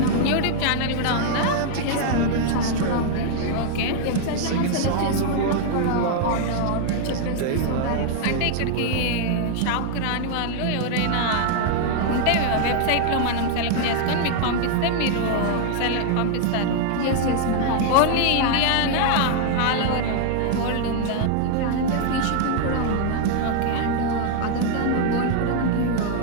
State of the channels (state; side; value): different; both; correlation 0.00